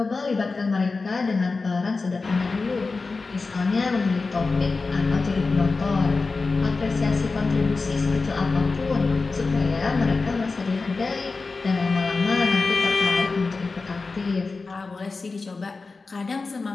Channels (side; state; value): right; quieter; 4.0 dB